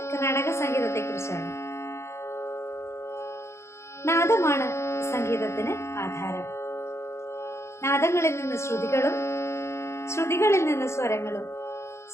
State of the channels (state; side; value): late; right; 0.13 ms